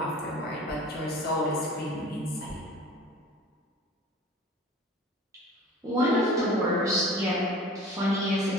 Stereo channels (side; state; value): both; normal; correlation 0.42